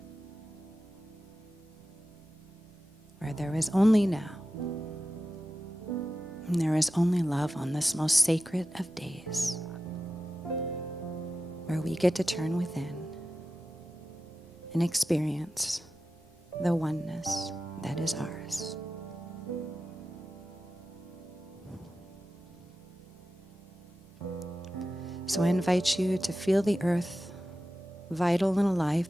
where there is only now, and there is only love on this most sacred of days, where we get to turn within and experience the oneness that is ours. So I invite you to feel the earth vital and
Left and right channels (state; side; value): normal; both; correlation 0.93